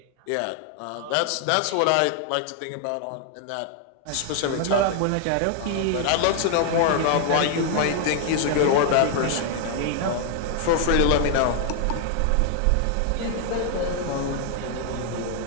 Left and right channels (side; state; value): both; different; correlation 0.00